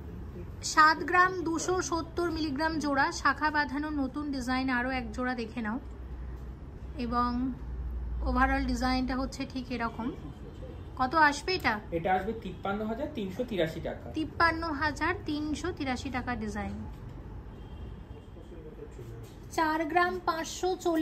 7 গ্রাম 270 মিলিগ্রাম জোড়া, শাখা বাঁধানো নতুন ডিজাইন। আরও এক জোড়া দেখে নাও এবং ওভারঅল ডিজাইনটা হচ্ছে ঠিক এরকম। কত আসবে এটা? এটা আসবে 53,383 টাকা। 53,383 টাকা ডিজাইন। 4 গ্রাম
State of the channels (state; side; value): identical; both; correlation 1.00